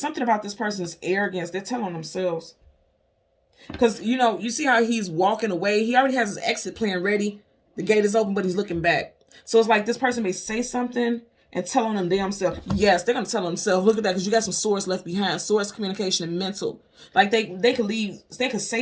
about this person's arrogance. They're telling themselves. Because, you see how he's walking away. He already has his exit plan ready. The gate is open, but he's looking back. So it's like this person may say something and tell on them damn self. Yes, they're going to tell themselves. Look at that, because you got some swords left behind. Swords, communication, and mental. Like they could leave. They could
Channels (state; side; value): identical; both; correlation 1.00